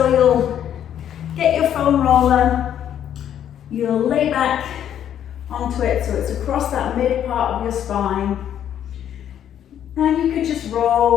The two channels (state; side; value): quieter; right; 10.0 dB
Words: you'll get your foam roller, you'll lay back onto it so it's across that mid part of your spine. And you could just